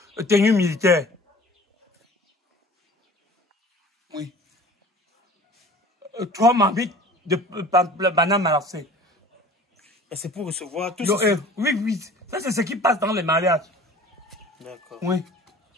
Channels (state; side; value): normal; both; correlation 0.45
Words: tenue militaire. Oui. 3 marmites de banane malassée. Et c'est pour recevoir tout ça. Oui. Ça, c'est ce qui passe dans les mariages. D'accord. Oui.